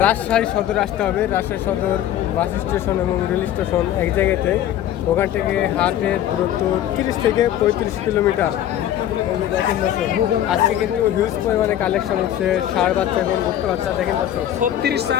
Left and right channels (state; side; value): quieter; right; 11.6 dB